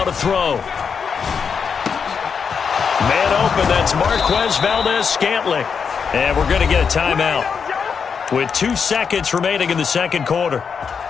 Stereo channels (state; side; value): quieter; right; 6.3 dB